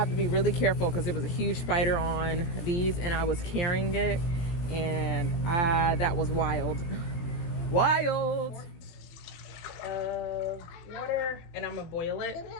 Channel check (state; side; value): late; right; 17 ms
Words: to be really careful because there was a huge spider on these and I was carrying it, and that was wild. Wild. Water, and I'm gonna boil it.